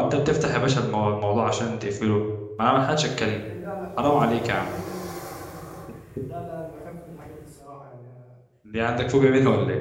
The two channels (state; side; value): identical; both; correlation 1.00